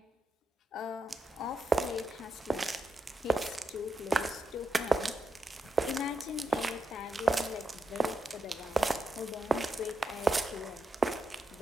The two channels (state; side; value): normal; both; correlation 0.85